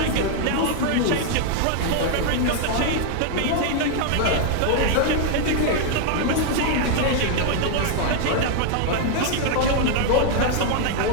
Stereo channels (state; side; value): different; both; correlation 0.00